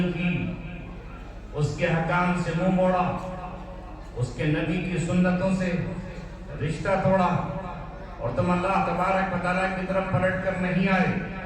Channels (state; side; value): identical; both; correlation 1.00